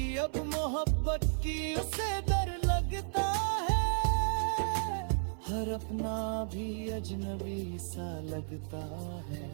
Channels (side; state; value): left; silent; 56 dB below the other